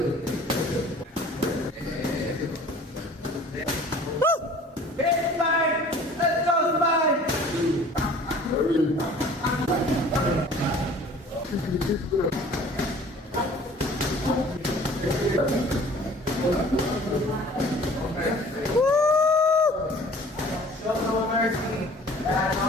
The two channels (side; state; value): both; normal; correlation 0.49